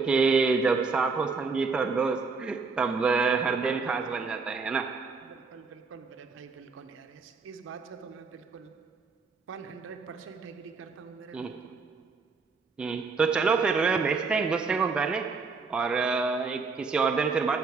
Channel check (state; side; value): quieter; left; 4.6 dB